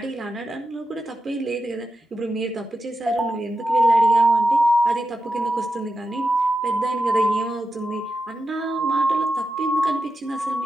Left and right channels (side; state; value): both; normal; correlation 0.89